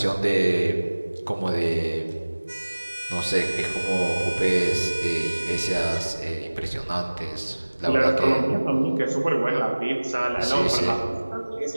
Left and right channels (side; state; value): both; inverted; correlation -1.00